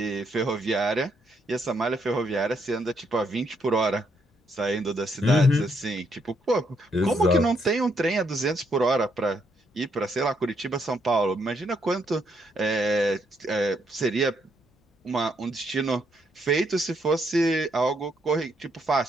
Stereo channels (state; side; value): normal; both; correlation 0.74